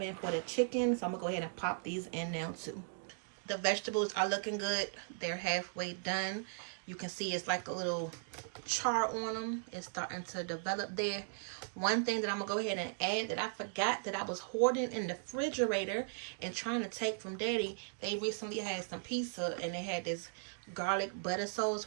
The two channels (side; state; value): left; silent; digital silence